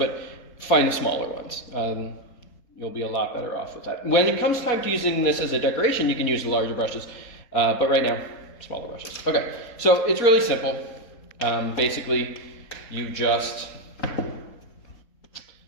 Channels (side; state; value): right; late; 4.2 ms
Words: find the smaller ones. You'll be a lot better off with that. When it comes time to using this as a decoration, you can use the larger brushes, but right now, smaller brushes. Okay, so it's really simple. Basically, you just